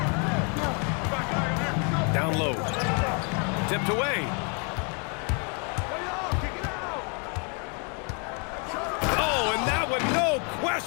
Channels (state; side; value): quieter; right; 37.0 dB